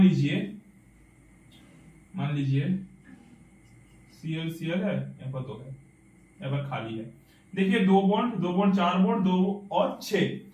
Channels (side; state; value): both; identical; correlation 1.00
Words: लीजिए Cl है, यहाँ पर दो है, यहाँ पर खाली है। देखिए दो बॉन्ड 4 बॉन्ड 2 और 6,